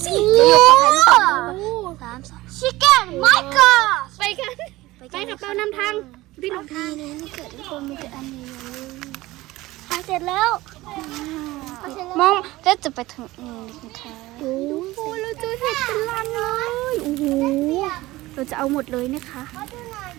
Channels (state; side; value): quieter; left; 18.5 dB